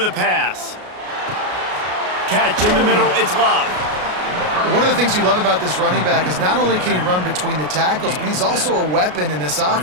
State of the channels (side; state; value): left; late; 33 ms